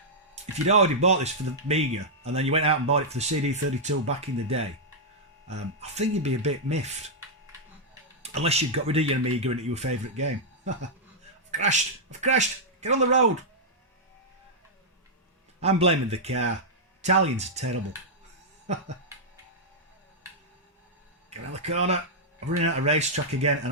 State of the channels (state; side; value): normal; both; correlation -0.07